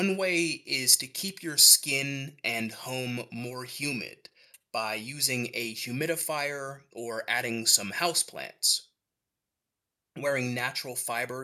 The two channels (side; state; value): both; identical; correlation 1.00